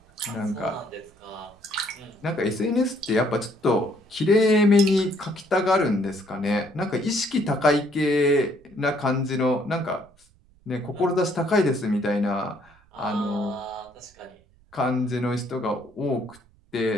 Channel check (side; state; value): right; noise; rumble, 30 dB below the sound